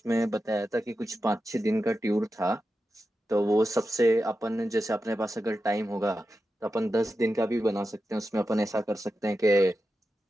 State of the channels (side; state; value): both; normal; correlation 0.91